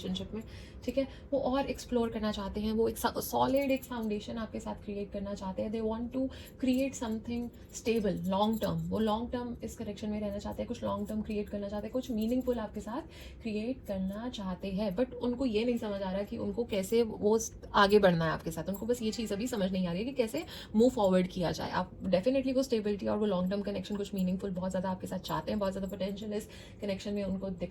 में, ठीक है। वो और एक्सप्लोर करना चाहते हैं, वो एक सॉलिड एक फाउंडेशन आपके साथ क्रिएट करना चाहते हैं। They want to create something stable, long term. वो लॉन्ग टर्म इस कनेक्शन में रहना चाहते हैं, कुछ लॉन्ग टर्म क्रिएट करना चाहते हैं, कुछ मीनिंगफुल आपके साथ क्रिएट करना चाहते हैं। बट उनको ये नहीं समझ आ रहा कि उनको कैसे वो आगे बढ़ना है आपके साथ। उनको बस ये चीज़ अभी समझ नहीं आ रही है कि कैसे मूव फॉरवर्ड किया जाए। आप डेफिनेटली वो स्टेबिलिटी और वो लॉन्ग टर्म कनेक्शन, कुछ मीनिंगफुल बहुत ज़्यादा आपके साथ चाहते हैं। बहुत ज़्यादा पोटेंशियल इस कनेक्शन में उनको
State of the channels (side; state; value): both; identical; correlation 1.00